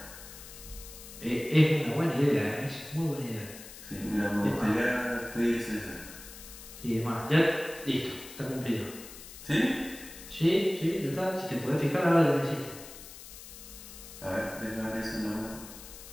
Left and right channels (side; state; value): left; noise; hiss, 15 dB below the sound